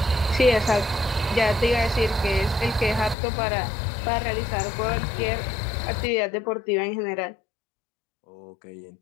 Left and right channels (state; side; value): drops out; right; at 3.2 s